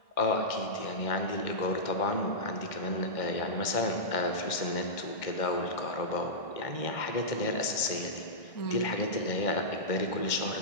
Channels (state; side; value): late; right; 1.6 ms